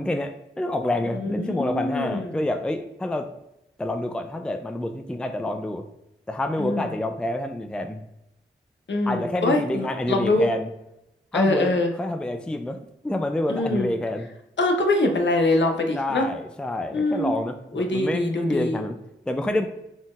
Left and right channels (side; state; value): both; normal; correlation 0.71